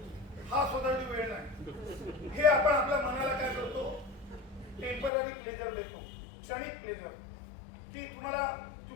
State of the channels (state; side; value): drops out; right; at 5.1 s